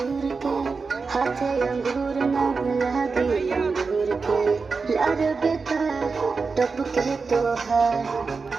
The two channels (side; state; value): left; quieter; 4.6 dB